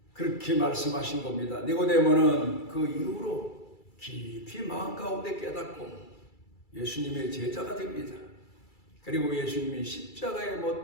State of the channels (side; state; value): right; late; 2.3 ms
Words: 그렇게 말씀하신 겁니다. 니고데모는 그 이후로 깊이 마음 가운데 깨닫고 예수님의 제자가 됩니다. 그리고 예수님이 십자가에